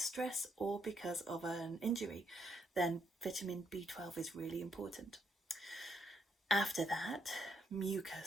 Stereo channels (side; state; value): both; normal; correlation 0.75